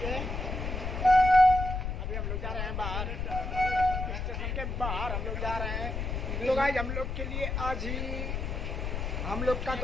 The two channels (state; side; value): noise; left; rumble, 3 dB below the sound